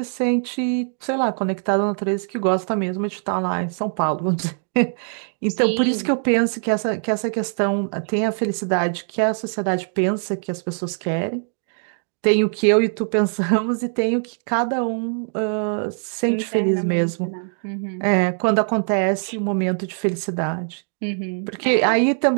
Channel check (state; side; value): silent; left; 64 dB below the other